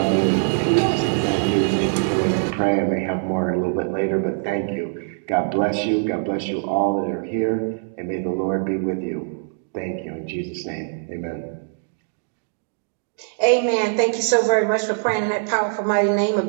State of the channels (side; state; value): left; silent; 64 dB below the other